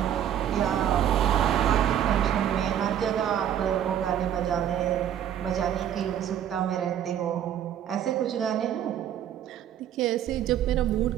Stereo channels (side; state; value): left; quieter; 10.2 dB